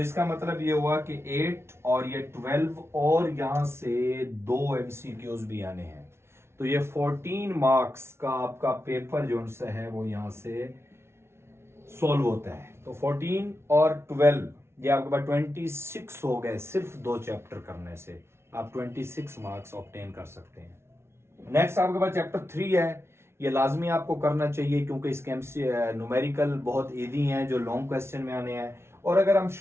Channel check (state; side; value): late; left; 0.12 ms